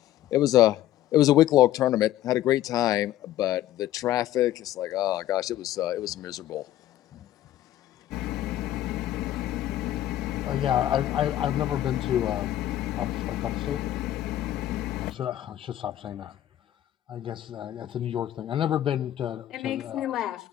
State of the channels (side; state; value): right; quieter; 13.1 dB